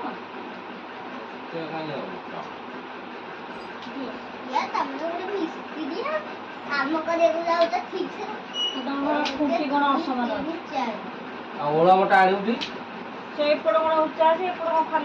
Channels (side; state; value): both; identical; correlation 1.00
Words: ସେ କାଇଁ ହବ या तमने ଗୋଟେ ମିସ୍ତ୍ରୀ କାମ କରିବାକୁ ଯାଉଛ ଠିକ ସେ ତମର ଖୁଣ୍ଟି କ'ଣ ଅସମାନ ଅଛି? ଆଉ ଓଳା ମୋଟା ଆଣିବୁଟି ସେ ଏପଟ କ'ଣ ଉଚ୍ଚା ଅଛି ଏପଟ କ'ଣ